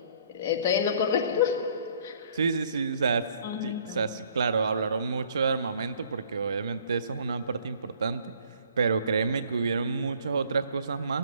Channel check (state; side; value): inverted; both; correlation -0.59